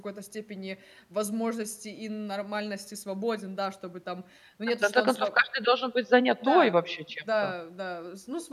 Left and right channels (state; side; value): identical; both; correlation 1.00